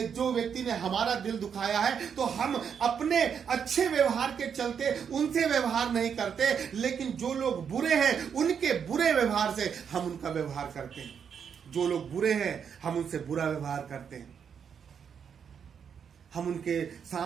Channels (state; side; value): quieter; left; 7.3 dB